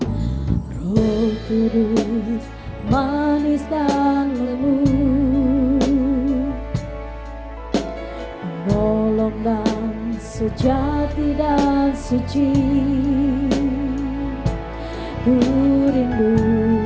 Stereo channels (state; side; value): identical; both; correlation 1.00